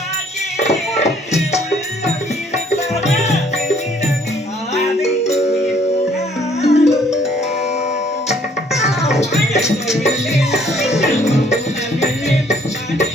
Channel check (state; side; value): normal; both; correlation 0.62